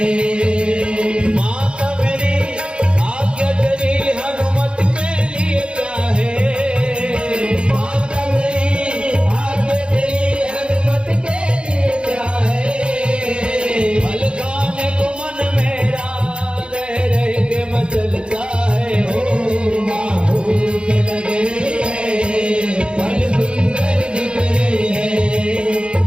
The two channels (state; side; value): late; left; 0.055 ms